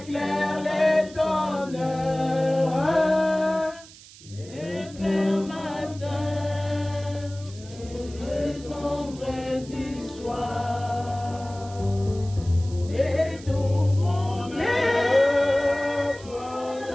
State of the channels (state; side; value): noise; right; hiss, 20 dB below the sound